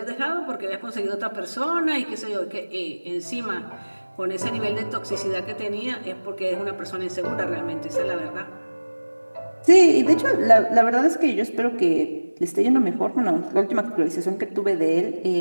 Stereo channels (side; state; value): both; inverted; correlation -1.00